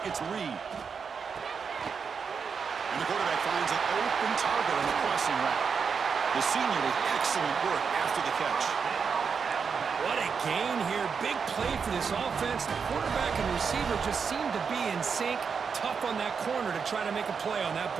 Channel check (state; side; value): quieter; left; 6.0 dB